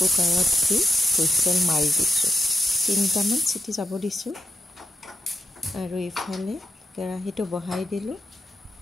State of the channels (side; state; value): both; normal; correlation 0.85